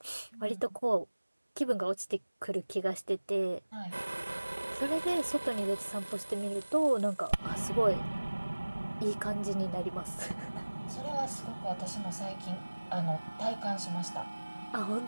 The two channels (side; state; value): both; inverted; correlation -1.00